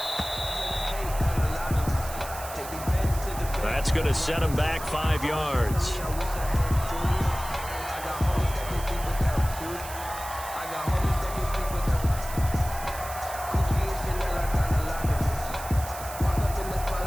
That's going to set him back 5 yards.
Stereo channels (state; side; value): noise; right; hiss, 12 dB below the sound